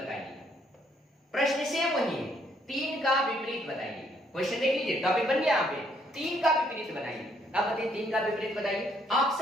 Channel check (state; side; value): normal; both; correlation 0.69